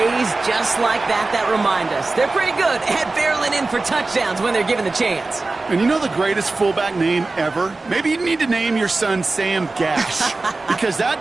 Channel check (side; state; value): left; quieter; 3.4 dB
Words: just like that remind us. They're pretty good at barreling in for touchdowns when they're given the chance. And you know the greatest fullback name ever? Maybe you need to name your son Sam Gash. Because